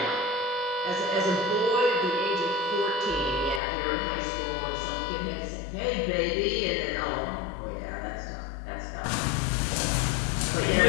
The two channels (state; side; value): drops out; right; at 3.6 s